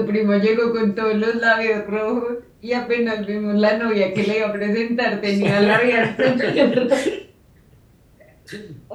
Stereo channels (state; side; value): identical; both; correlation 1.00